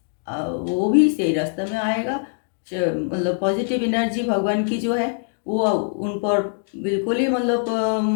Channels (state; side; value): silent; right; 62 dB below the other